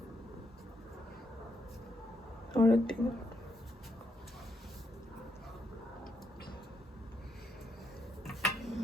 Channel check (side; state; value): both; normal; correlation 0.79